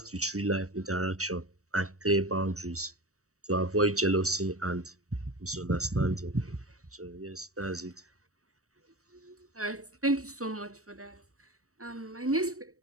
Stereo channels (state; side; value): late; left; 0.65 ms